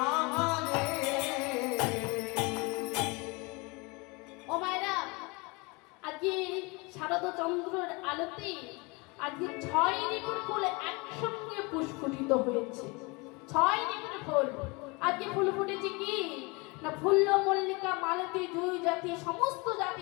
আহারে ও মায়েরা, আজকে শারদ চন্দ্রের আলোতে আজকে 6 ঋতুর ফুল একসঙ্গে পুষ্পিত হয়েছে। 6 ঋতুর ফুল আজকে ফুল ফুটেছে কি না, ফুল্ল মল্লিকা মালতী জুই জাতি সমস্ত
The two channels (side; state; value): right; quieter; 27.4 dB